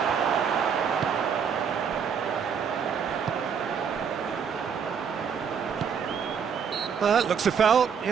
Looks a foul.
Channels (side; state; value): left; quieter; 6.9 dB